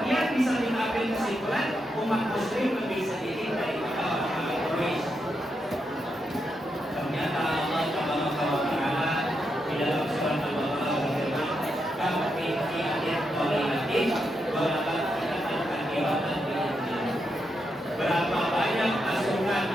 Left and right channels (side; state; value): both; normal; correlation 0.83